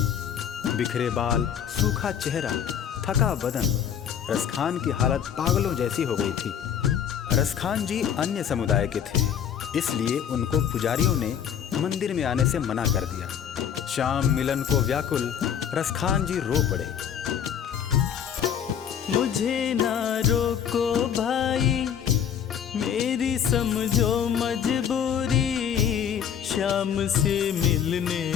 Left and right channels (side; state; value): right; quieter; 8.7 dB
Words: बिखरे बाल, सूखा चेहरा, थका बदन, रसखान की हालत पागलों जैसी हो गई थी। रसखान जी अन्य समुदाय के थे, इसलिए उनको पुजारियों ने मंदिर में आने से मना कर दिया। श्याम मिलन को व्याकुल रसखान जी रो पड़े। मुझे ना रोको भाई, मेरी समझो मजबूरी। श्याम से मिलने